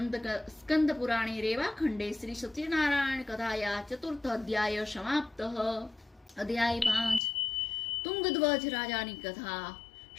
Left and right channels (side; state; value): right; drops out; at 7.2 s